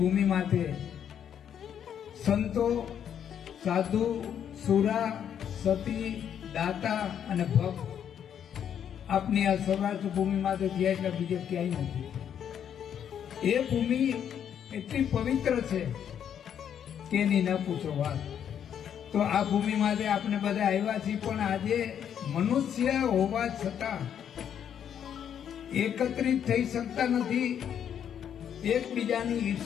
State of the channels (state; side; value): quieter; right; 8.9 dB